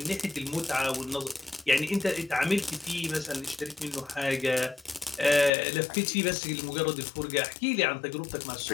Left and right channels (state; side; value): drops out; right; at 5.5 s